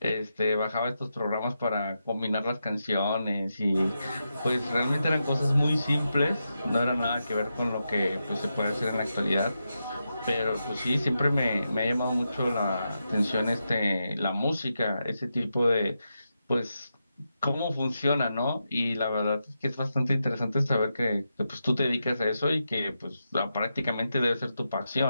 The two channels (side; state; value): both; inverted; correlation -0.87